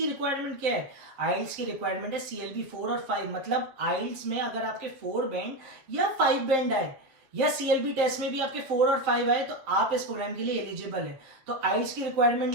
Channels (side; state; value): left; late; 7.4 ms